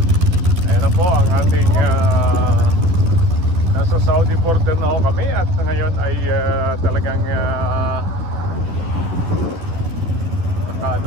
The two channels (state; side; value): late; left; 12 ms